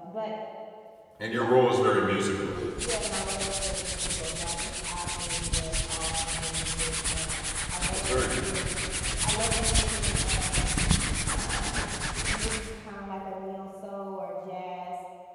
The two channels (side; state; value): both; identical; correlation 1.00